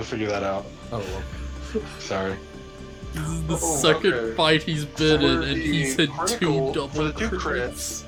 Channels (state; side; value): identical; both; correlation 1.00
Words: figure that out. Oh, Sorry. This is the Oh, second okay. fight he's been in, and he's had 2 For double the 2 crits. crits,